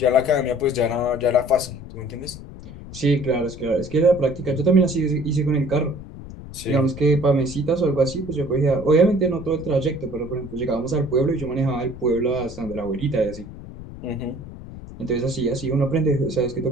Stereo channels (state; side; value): noise; left; rumble, 14 dB below the sound